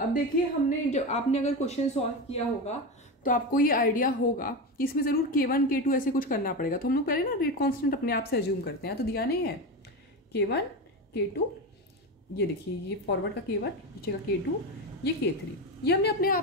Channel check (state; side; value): normal; both; correlation 0.19